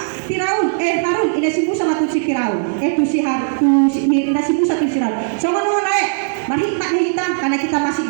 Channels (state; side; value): silent; left; digital silence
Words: Firaun, Harun, ini si Musa sama si Firaun, si Harun, ini si Musa tu si Harun. Sama nama lain, berhikmat hitam karena kita masih